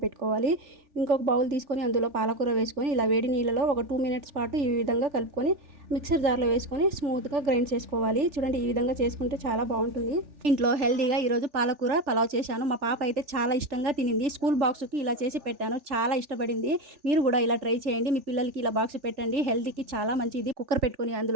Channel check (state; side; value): late; left; 3.4 ms